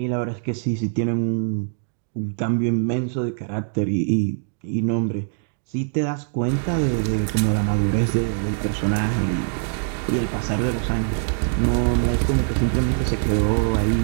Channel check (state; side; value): silent; left; digital silence